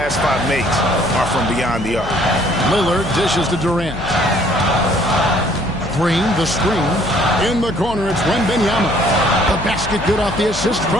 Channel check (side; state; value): left; noise; hum, 12 dB below the sound